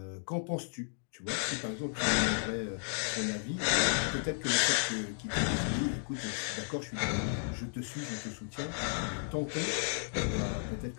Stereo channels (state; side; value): silent; right; digital silence